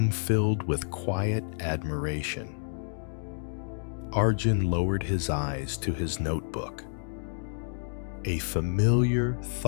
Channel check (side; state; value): right; silent; digital silence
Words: filled with quiet admiration. Arjun lowered his eyes to his notebook. A familiar